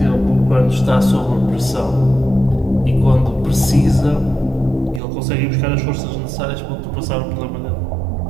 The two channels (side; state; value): left; drops out; at 5.0 s